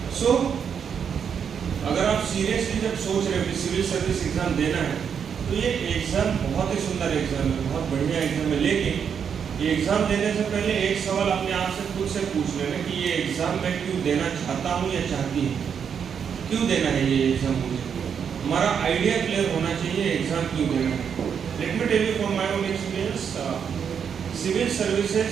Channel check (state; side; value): quieter; left; 7.3 dB